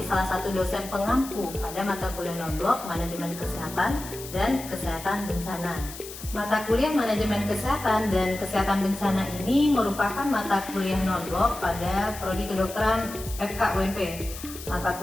salah satu dosen pengampu pada mata kuliah non-blok manajemen kesehatan dan kesehatan bencana. Mata kuliah manajemen kesehatan dan kesehatan bencana ini merupakan mata kuliah non-blok pada prodi kedokteran FKUNP. Mata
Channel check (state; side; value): noise; left; hiss, 13 dB below the sound